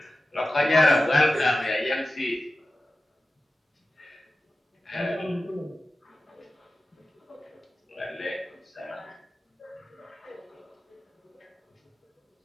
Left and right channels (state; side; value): normal; both; correlation 0.94